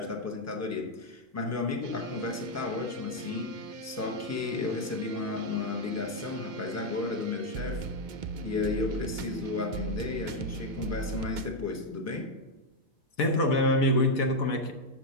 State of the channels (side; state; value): both; normal; correlation 0.01